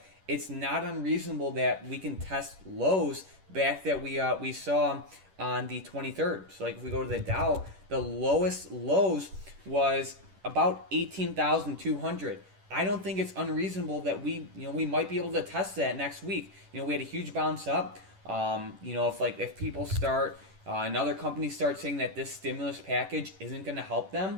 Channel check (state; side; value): late; left; 10 ms